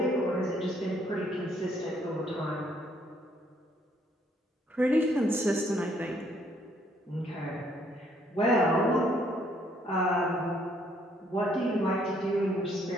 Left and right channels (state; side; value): normal; both; correlation 0.67